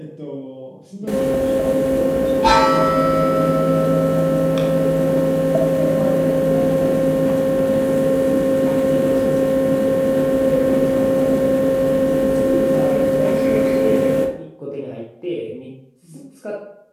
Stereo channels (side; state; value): both; identical; correlation 1.00